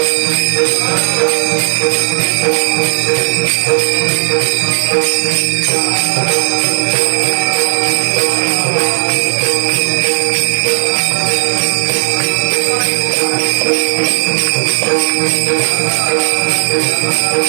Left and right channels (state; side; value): silent; left; digital silence